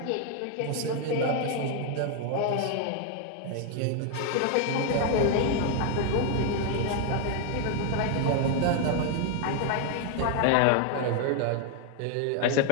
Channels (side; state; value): both; different; correlation 0.00